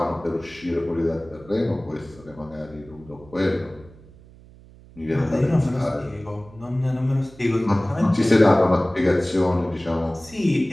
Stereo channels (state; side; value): noise; right; hum, 23 dB below the sound